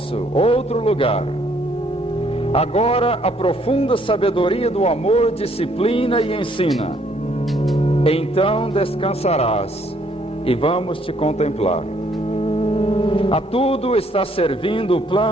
outro lugar. Agora a profunda sabedoria do amor disciplina e ensina. Então descansarás e vamos te contemplar. A tudo está servindo o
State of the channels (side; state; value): both; normal; correlation 0.66